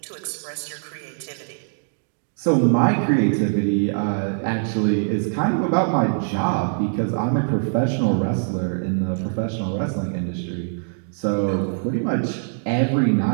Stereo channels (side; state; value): left; silent; digital silence